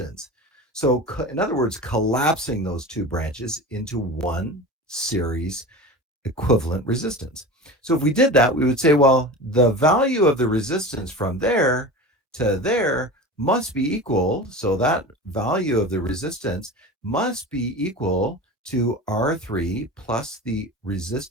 So in other words, collapsing those two branches into one series equivalent resistance. So if we did that, we would say, well, the value of the resistance from there to there must be equal. So that value of the resistance must be equal to R3 plus the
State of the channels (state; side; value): normal; both; correlation 0.32